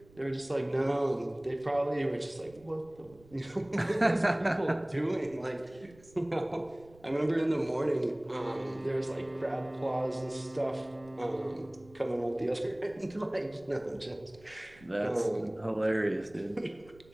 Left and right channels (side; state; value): right; noise; rumble, 25 dB below the sound